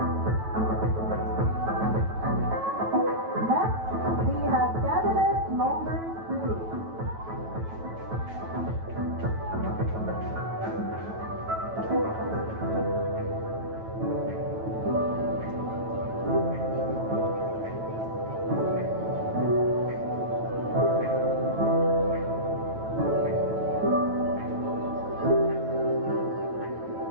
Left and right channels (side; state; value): left; late; 9.1 ms